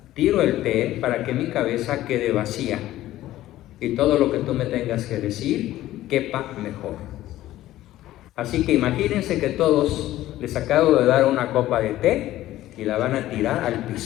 tiro el té para que mi cabeza quede vacía y todo lo que tú me tengas que decir quepa mejor. Así que imagínense que todos les acabo de dar una copa de té y la van a tirar al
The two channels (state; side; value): quieter; right; 14.7 dB